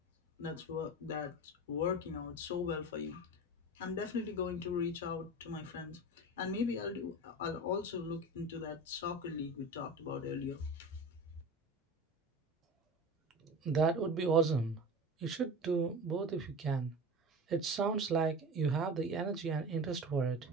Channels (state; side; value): normal; both; correlation 0.32